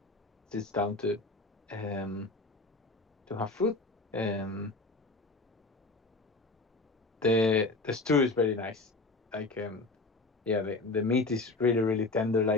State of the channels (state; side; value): quieter; right; 3.3 dB